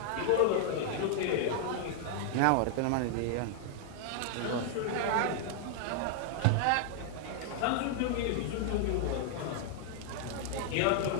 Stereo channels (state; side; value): different; both; correlation 0.00